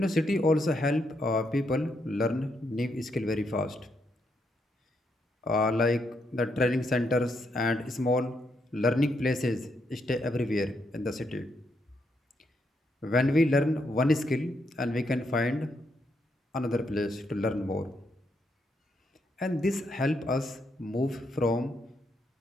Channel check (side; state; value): both; normal; correlation 0.78